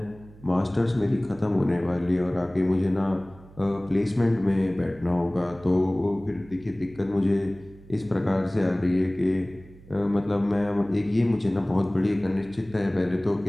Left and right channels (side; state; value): right; noise; hum, 22 dB below the sound